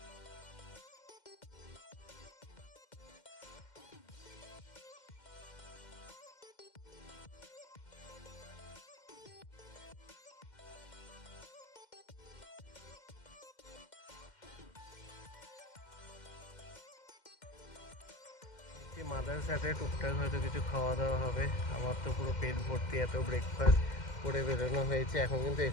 মাদার সাথে টুকটাক হয়তো কিছু খাওয়া দাওয়া হবে। আমার তো পুরো পেট ভর্তি, এত ব্রেকফাস্ট করে বেরোনো হয়েছে। এখন কিন্তু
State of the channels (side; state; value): right; late; 2.1 ms